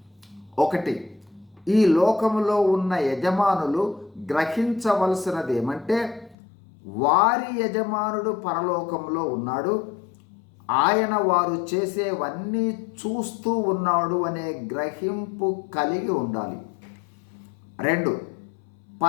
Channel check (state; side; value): drops out; right; at 6.4 s